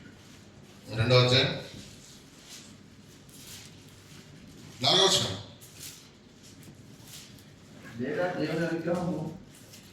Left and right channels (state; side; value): identical; both; correlation 1.00